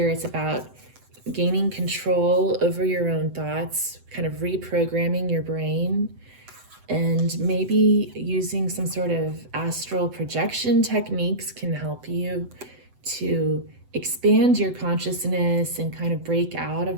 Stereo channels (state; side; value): late; left; 7.9 ms